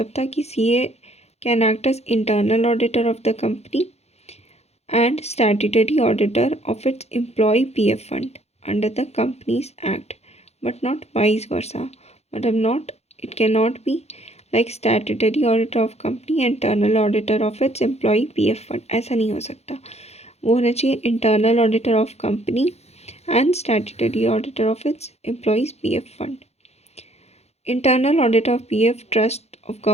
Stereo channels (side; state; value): right; late; 0.31 ms